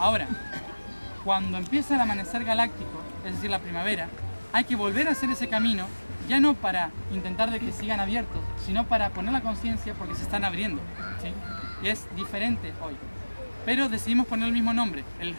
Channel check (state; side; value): inverted; both; correlation -1.00